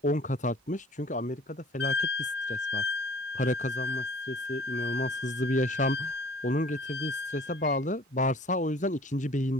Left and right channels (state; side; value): normal; both; correlation 0.51